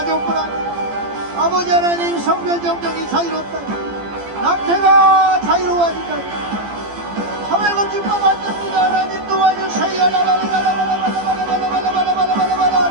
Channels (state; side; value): late; left; 15 ms